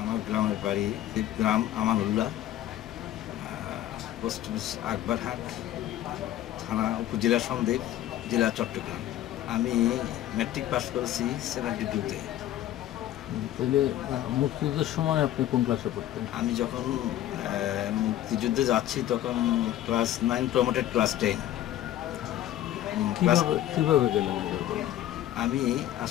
গ্রামের বাড়ি গ্রাম আমানুল্লাহ, পোস্ট অফিস আকবরহাট, থানা উপজেলা সন্দ্বীপ, জেলা চট্টগ্রাম। আমি ম্যাট্রিক পাস করেছি 72-তে। তাহলে মুক্তিযুদ্ধের সময় আপনি কোন ক্লাসে পড়তেন? আমি যখন মুক্তিযুদ্ধে যাচ্ছি তখন ক্লাস 9 প্রমোটেড ক্লাস 10। কিভাবে গেলেন? আমি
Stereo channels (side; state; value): right; quieter; 12.9 dB